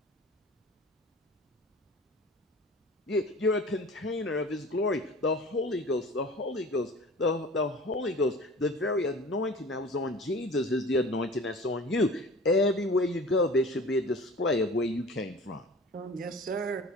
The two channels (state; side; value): normal; both; correlation 0.42